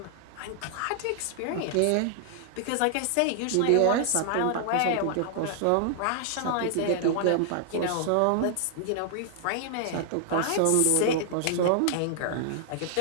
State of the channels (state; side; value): different; both; correlation -0.01